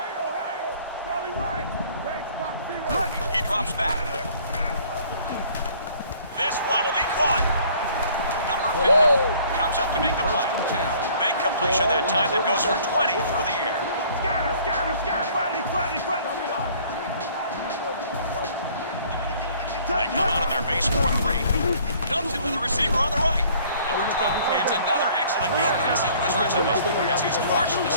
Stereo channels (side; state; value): both; inverted; correlation -0.55